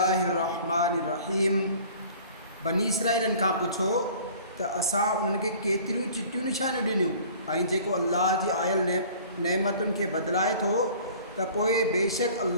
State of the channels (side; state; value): both; inverted; correlation -0.48